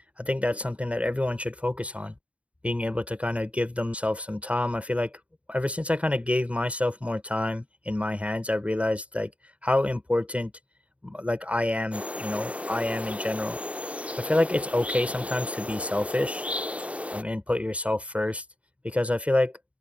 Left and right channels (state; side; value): late; left; 0.064 ms